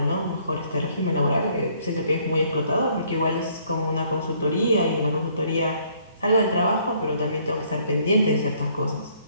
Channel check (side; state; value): both; inverted; correlation -0.64